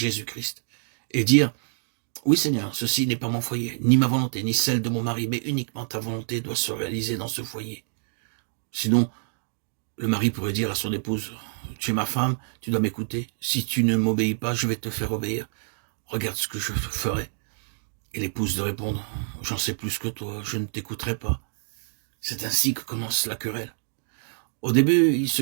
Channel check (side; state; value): left; silent; digital silence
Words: et dire, oui Seigneur, ceci n'est pas mon foyer, ni ma volonté, ni celle de mon mari, mais uniquement ta volonté doit se réaliser dans ce foyer. Sinon, le mari pourrait dire à son épouse, tu es ma femme, tu dois m'écouter, si tu ne m'obéis pas, je vais te faire obéir. Regarde ce que je ferai. Et l'épouse de répondre, j'en sais plus que toi, je ne t'écouterai pas. C'est ainsi que commence la querelle. Au début, ils se